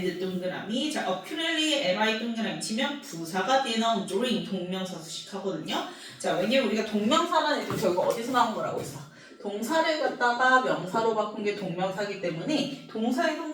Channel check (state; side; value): identical; both; correlation 1.00